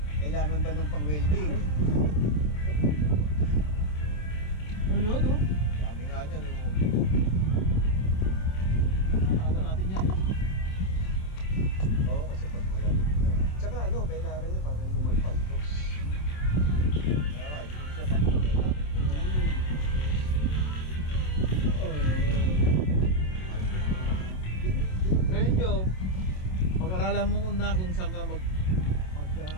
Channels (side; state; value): right; late; 27 ms